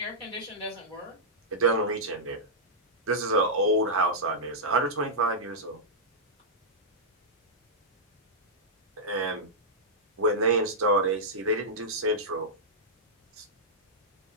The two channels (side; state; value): both; normal; correlation -0.11